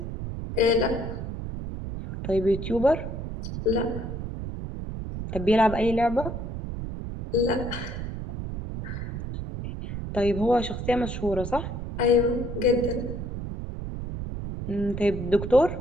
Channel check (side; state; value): right; noise; rumble, 6 dB below the sound